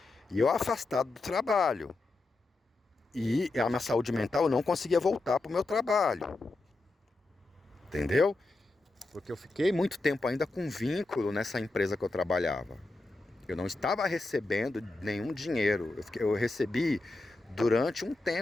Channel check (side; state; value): right; quieter; 3.1 dB